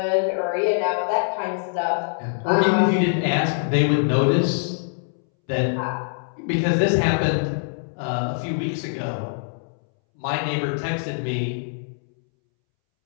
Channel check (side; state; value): right; silent; 63 dB below the other